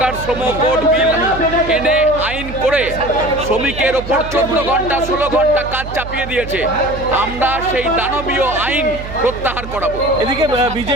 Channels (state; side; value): noise; right; hum, 10 dB below the sound